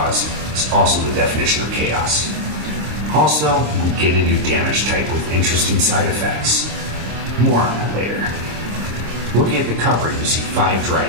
is also the definition of chaos. Also, we get a new damage type with interesting side effects. More on that later. Looking at the cover, you see 5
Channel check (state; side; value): late; left; 26 ms